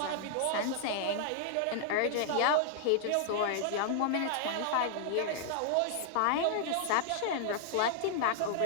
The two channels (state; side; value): different; both; correlation -0.01